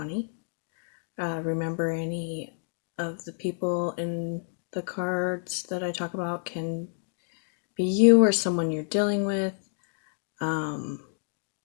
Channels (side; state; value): right; silent; digital silence